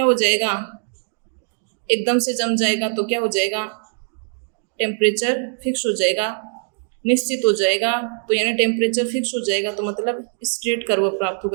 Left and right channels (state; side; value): silent; left; 56 dB below the other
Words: हो जाएगा, एकदम से जम जाएगा तो क्या हो जाएगा, टेम्परेचर फिक्स हो जाएगा, निश्चित हो जाएगा। तो यानी टेम्परेचर फिक्स हो जाएगा तो मतलब स्ट्रेट कर्व प्राप्त